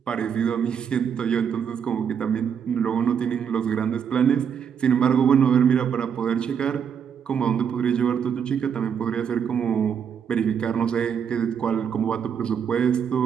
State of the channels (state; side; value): quieter; left; 7.5 dB